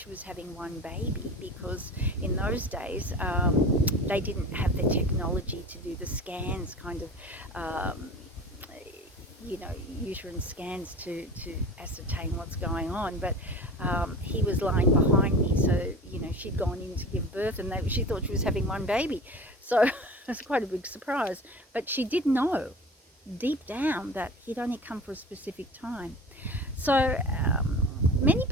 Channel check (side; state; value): both; normal; correlation 0.36